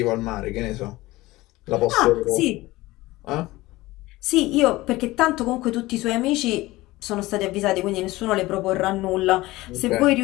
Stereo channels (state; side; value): quieter; right; 19.0 dB